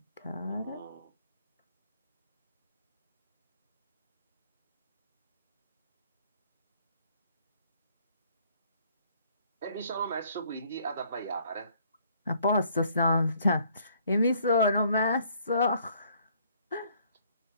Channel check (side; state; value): both; inverted; correlation -0.63